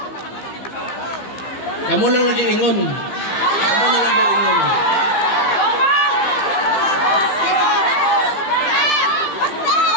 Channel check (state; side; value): late; right; 15 ms